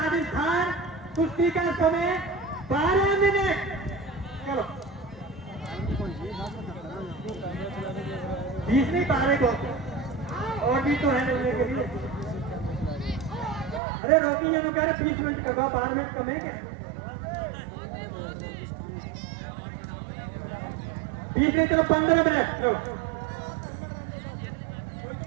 कुश्ती का समय 12 मिनट। चलो 20 नहीं, 12 को और भी तो है लेने के लिए। अरे रोकी, ये तो कह रहे 20 मिनट का, 12 मिनट कम है क्या? 20 नहीं, चलो 15 मिनट।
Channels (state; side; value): drops out; left; at 13.8 s